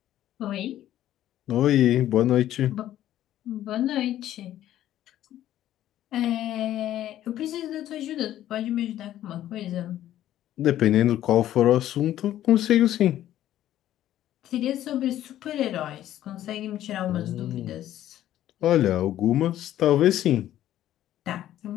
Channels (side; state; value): right; quieter; 12.6 dB